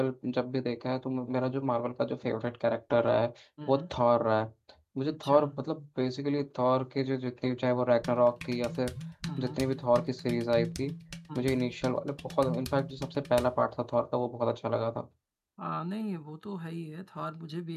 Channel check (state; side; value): identical; both; correlation 1.00